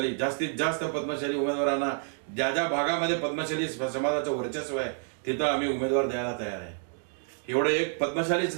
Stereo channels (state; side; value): silent; left; 59 dB below the other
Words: जास्तीत जास्त पद्मशाली उमेदवारांना ज्या ज्या भागामध्ये पद्मशाली समाजाचं वर्चस्व आहे तिथं आम्ही उमेदवार द्यायला तयार आहे. एवढं एक पद्मशालीच